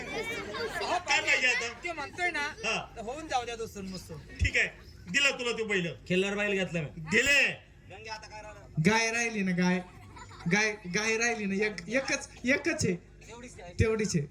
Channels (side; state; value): both; identical; correlation 1.00